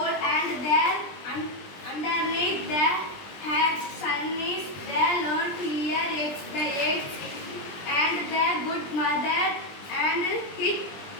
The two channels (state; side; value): late; right; 20 ms